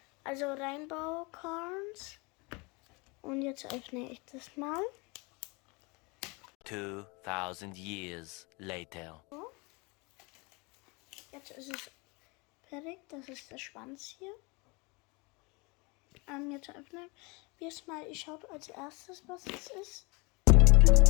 also Rainbow Corns, und jetzt öffne ich das mal. 2000 years later. So. Jetzt ist es fertig, das ist der Schwanz hier. Jetzt öffnen wir es mal, ich schaue als erstes, was es ist.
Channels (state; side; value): quieter; right; 28.1 dB